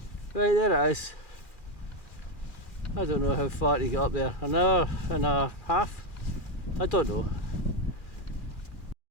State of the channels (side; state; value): right; late; 2.4 ms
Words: Right, there it is. I don't know how far to get up there, an hour and a half? I don't know.